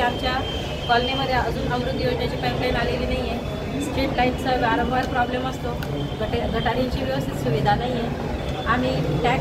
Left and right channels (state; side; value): identical; both; correlation 1.00